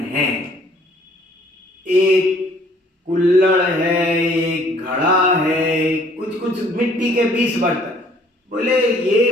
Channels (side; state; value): both; normal; correlation 0.59